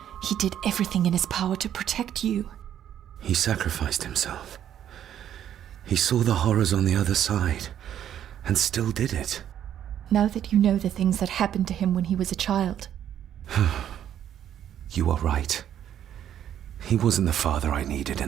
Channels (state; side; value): quieter; left; 10.4 dB